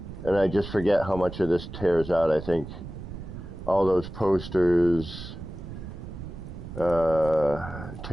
And I just forget how much of this tears out. I think all those posters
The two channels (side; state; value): right; noise; rumble, 11 dB below the sound